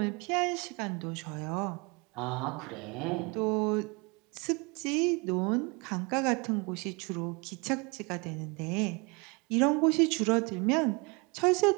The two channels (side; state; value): left; quieter; 29.5 dB